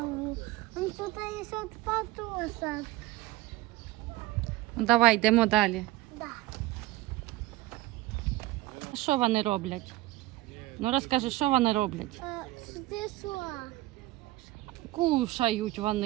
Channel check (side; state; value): left; quieter; 17.6 dB